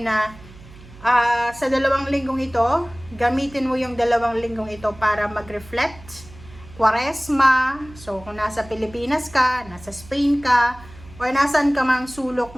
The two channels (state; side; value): noise; right; hum, 20 dB below the sound